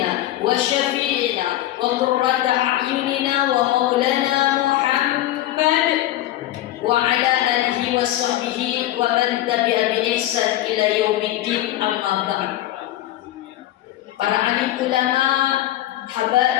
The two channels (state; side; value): quieter; right; 14.3 dB